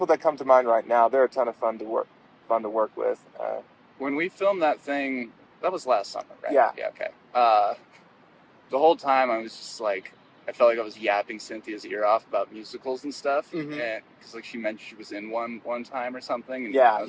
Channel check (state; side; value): identical; both; correlation 1.00